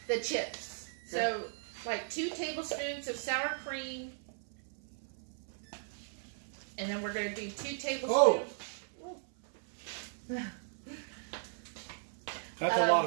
The chips. Okay. So, like 2 tablespoons of sour cream. And then we're going to do 2 tablespoons. Oh. That's a lot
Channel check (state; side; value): silent; left; 53 dB below the other